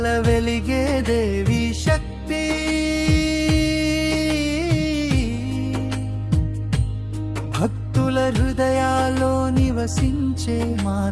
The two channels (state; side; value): identical; both; correlation 1.00